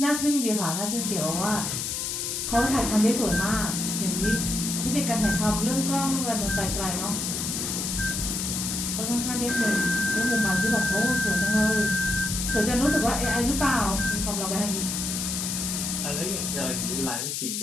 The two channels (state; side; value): noise; left; hiss, 2 dB below the sound